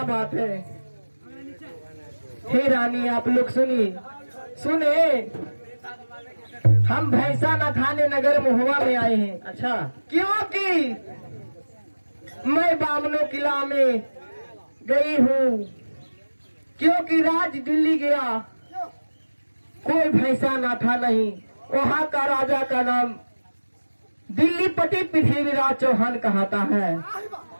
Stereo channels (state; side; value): inverted; both; correlation -1.00